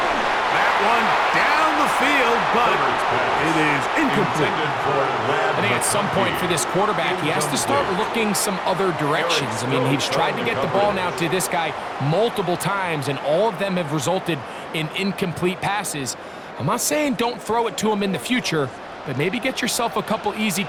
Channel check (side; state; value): both; identical; correlation 1.00